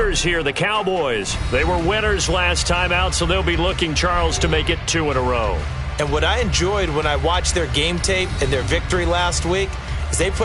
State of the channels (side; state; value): both; identical; correlation 1.00